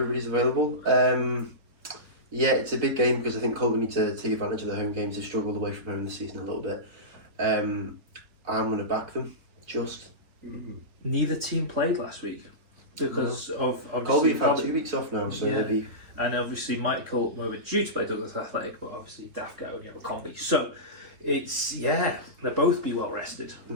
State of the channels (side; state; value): left; late; 3.7 ms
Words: available. Yeah, it's a big game because I think Colby need to take advantage of their home games. They've struggled away from home this season a little bit. I'm going to back them, just. Neither team played last week because of Colby have had 2 weeks off now, so they'll be... And obviously Michael were due to play Douglas Athletic, but obviously Daft go and you have a combi. So it's, they'll both be well rested.